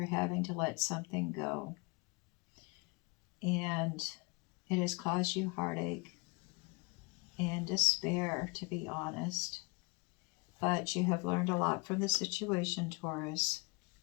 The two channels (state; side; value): quieter; right; 28.7 dB